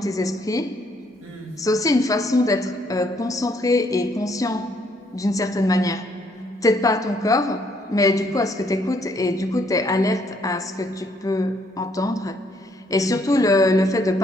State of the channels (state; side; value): normal; both; correlation 0.69